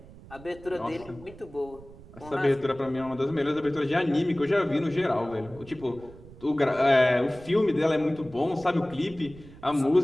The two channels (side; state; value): right; noise; rumble, 19 dB below the sound